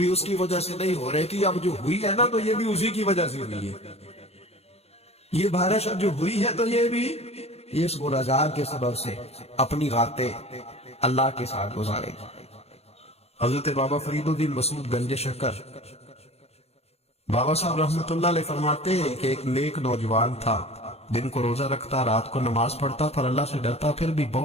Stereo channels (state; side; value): late; right; 0.30 ms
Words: اس کی وجہ سے نہیں ہو رہی تھی، اب جو ہوئی ہے نا تو یہ بھی اسی کی وجہ سے ہوئی ہے، یہ بارش اب جو ہوئی ہے تو یہ بھی اس گناہگار کے سبب سے اپنی راتیں اللہ کے ساتھ گزارے۔ حضرت بابا فرید الدین مسعود گنج شکر بابا صاحب رحمۃ اللہ علیہ فرماتے ہیں کہ ایک نیک نوجوان تھا، دن کو روزہ رکھتا، رات کو نماز پڑھتا، پر اللہ سے ڈرتا پھر بھی